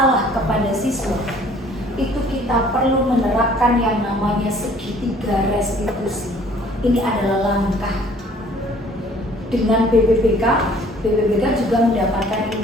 kepada siswa, itu kita perlu menerapkan yang namanya segitiga restitusi. Ini adalah langkah. Dengan BPPK juga mendapatkan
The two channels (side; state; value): both; normal; correlation 0.55